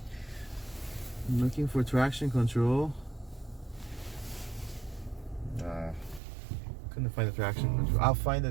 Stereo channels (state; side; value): drops out; left; at 6.2 s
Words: I'm looking for traction control. Couldn't find the traction control. I'll find